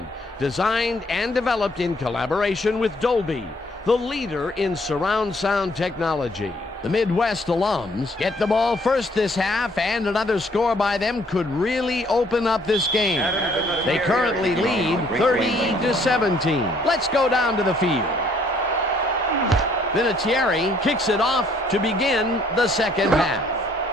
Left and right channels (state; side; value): normal; both; correlation 0.64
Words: designed and developed in collaboration with Dolby, the leader in surround sound technology. The Midwest alums get the ball first this half, and another score by them could really open up this game. They currently lead 30-17. Let's go down to the field. Vinatieri kicks it off to begin the second half.